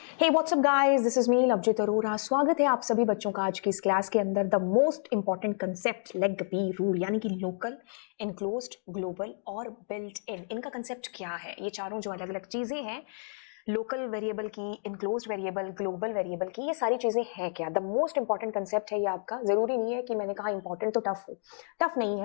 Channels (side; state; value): right; silent; digital silence